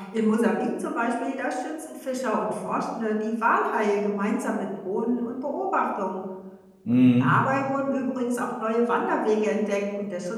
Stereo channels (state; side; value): identical; both; correlation 1.00